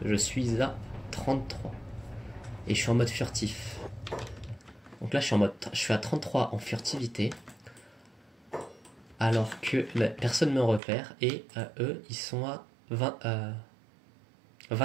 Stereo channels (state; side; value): drops out; left; at 10.8 s